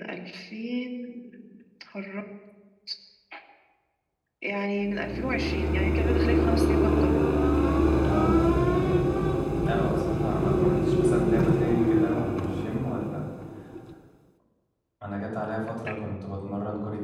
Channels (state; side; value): identical; both; correlation 1.00